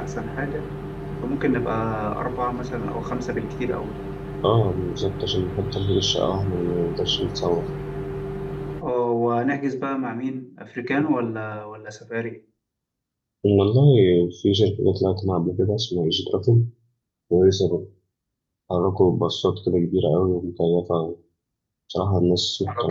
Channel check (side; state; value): both; identical; correlation 1.00